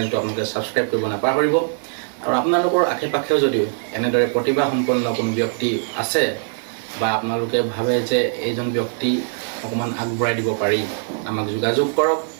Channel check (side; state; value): left; silent; digital silence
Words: আপোনালোকে ছাবস্ক্ৰাইব কৰিব নাপাহৰিব আৰু আপোনালোকৰ আশে পাশেও যদিও এনেদৰে প্ৰতিভাসম্পন্ন কোনো ব্যক্তি আছে বা আপোনালোকে ভাবে যে এইজন ব্যক্তি অকণমান আগবঢ়াই দিব পাৰি আমাক যোগাযোগ কৰক